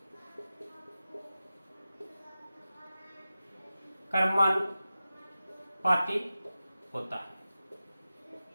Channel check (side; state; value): both; inverted; correlation -0.94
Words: क्रमानुपाती होता है।